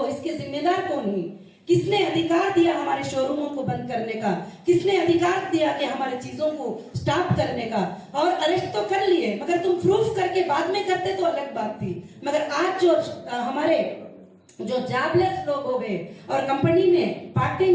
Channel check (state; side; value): identical; both; correlation 1.00